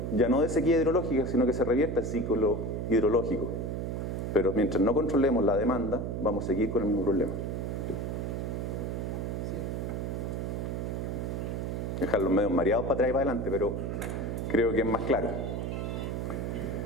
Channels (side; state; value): right; noise; hum, 2 dB below the sound